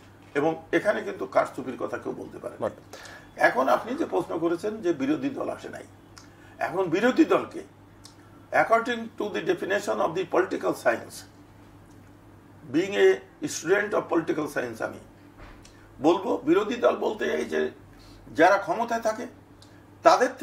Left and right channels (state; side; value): identical; both; correlation 1.00